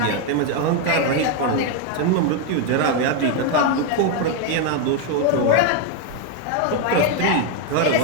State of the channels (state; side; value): different; both; correlation 0.01